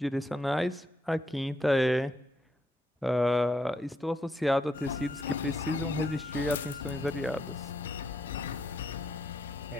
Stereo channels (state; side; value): normal; both; correlation 0.78